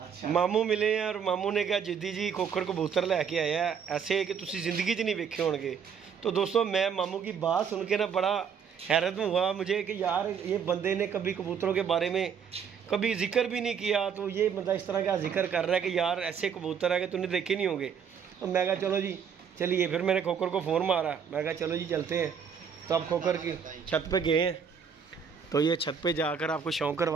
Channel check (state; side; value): quieter; left; 7.1 dB